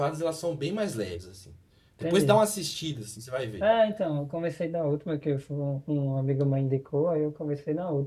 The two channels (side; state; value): both; identical; correlation 1.00